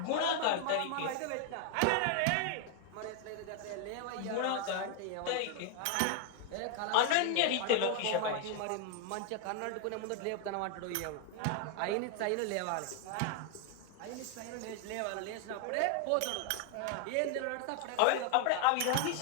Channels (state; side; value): different; both; correlation 0.00